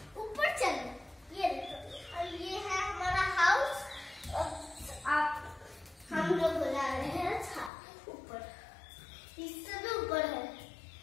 ऊपर चलो। ये देखो और ये है हमारा हाउस। आप हम लोग बुला रहे हैं छत ऊपर, इससे भी ऊपर है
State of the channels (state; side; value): drops out; right; at 7.7 s